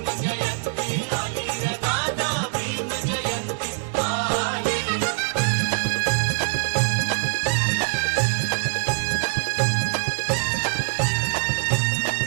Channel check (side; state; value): left; silent; digital silence